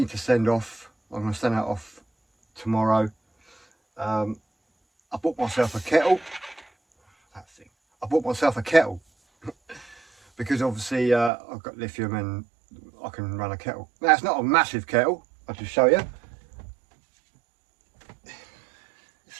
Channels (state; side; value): drops out; left; at 11.3 s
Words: to send off, I'm going to send that off tomorrow. I bought myself a kettle. I bought myself a kettle because obviously I've got lithium and I can run a kettle. Now it's not a massive kettle, I'll just show you. It's